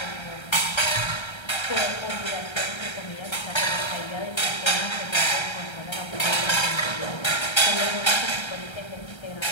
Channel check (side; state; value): right; late; 1.3 ms